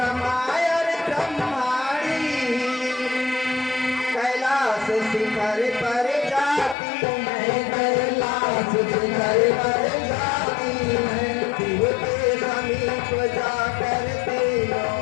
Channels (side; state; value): right; drops out; at 6.8 s